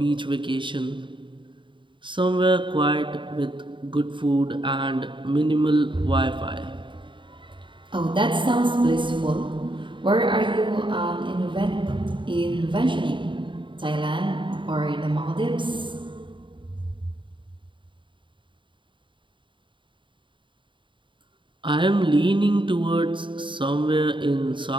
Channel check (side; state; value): left; late; 0.24 ms